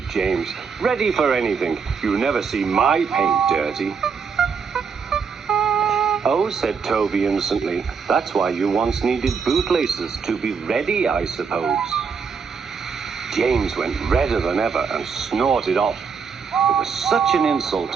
James. Ready for anything. You never see my paint dirty. Oh, said Toby innocently, that's why you once needed bootlaces, to be ready, I suppose. James went redder than ever and snorted off. It was such an insult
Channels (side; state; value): left; quieter; 5.9 dB